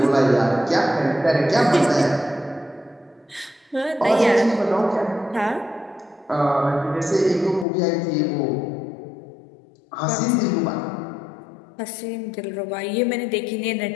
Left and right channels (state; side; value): drops out; right; at 7.7 s